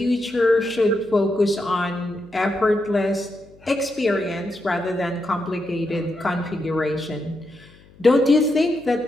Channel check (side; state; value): left; noise; hum, 26 dB below the sound